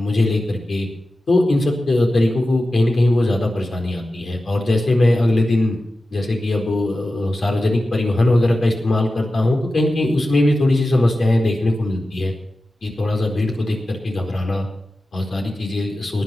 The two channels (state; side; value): normal; both; correlation 0.94